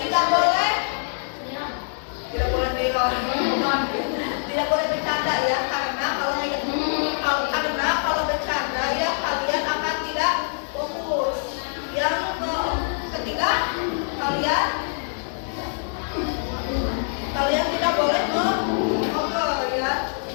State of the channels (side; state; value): right; silent; digital silence